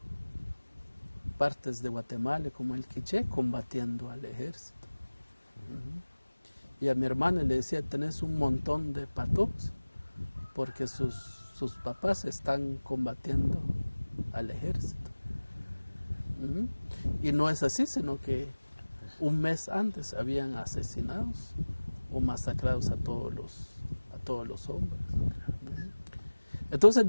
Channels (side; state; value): both; inverted; correlation -1.00